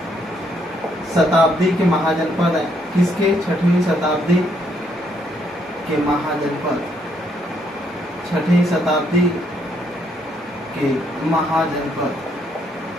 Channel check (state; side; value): normal; both; correlation 0.71